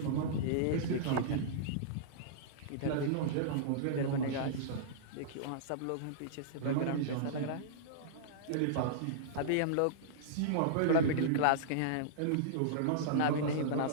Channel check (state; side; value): different; both; correlation -0.02